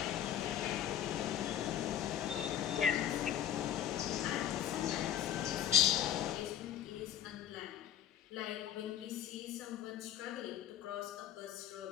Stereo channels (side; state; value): right; quieter; 10.4 dB